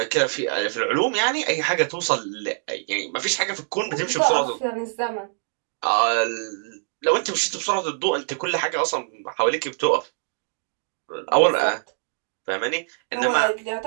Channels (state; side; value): silent; left; digital silence